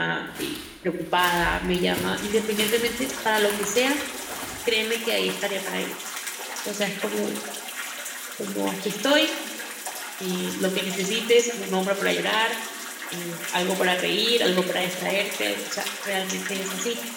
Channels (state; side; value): identical; both; correlation 1.00